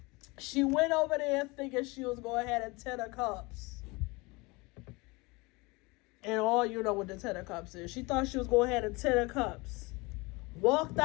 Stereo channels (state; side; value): quieter; right; 25.3 dB